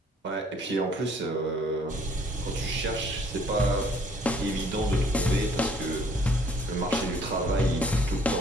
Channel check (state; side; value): normal; both; correlation 0.60